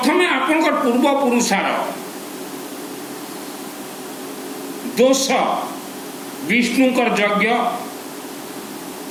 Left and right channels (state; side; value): identical; both; correlation 1.00